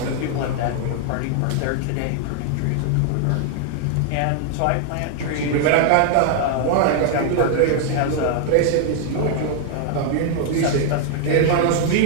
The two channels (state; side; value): different; both; correlation 0.00